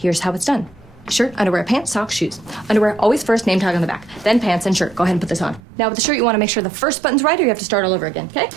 how it's done. Shirt, underwear, pants, socks, shoes. Underwear, always first, name tag on the back. Then pants and shirt. Go ahead and put this on. Now with the shirt, you want to make sure the first button's right, or you have to start all over again, okay?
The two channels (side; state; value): left; drops out; at 5.6 s